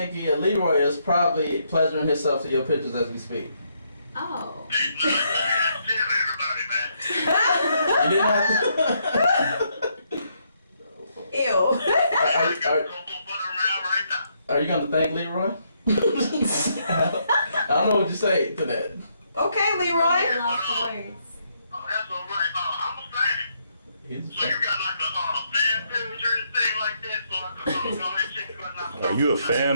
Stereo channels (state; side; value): inverted; both; correlation -0.75